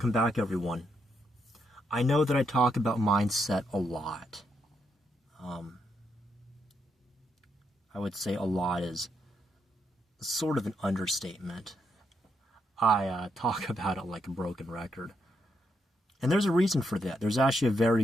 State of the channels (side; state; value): both; normal; correlation 0.79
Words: back everyone. I know that I talk about mindset a lot. I would say a lot is sort of an understatement. I talk about it like a broken record. And there's a reason for that. There's actually a very